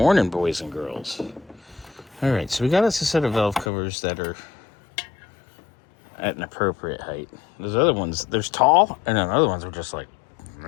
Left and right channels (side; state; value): right; drops out; at 3.7 s